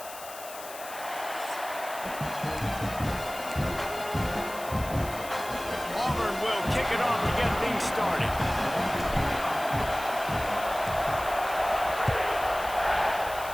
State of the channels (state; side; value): noise; left; hiss, 14 dB below the sound